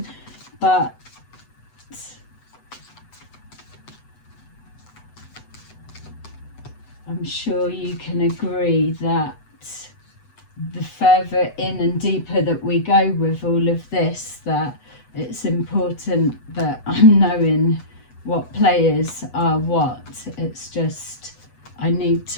but I'm sure you can agree that the further in and deeper that we go with all of this, that it's important that I'm knowing what players are what. It's just, I need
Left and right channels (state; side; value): late; right; 8.1 ms